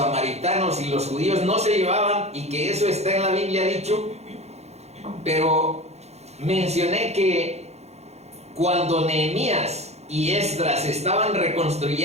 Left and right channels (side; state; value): left; late; 0.31 ms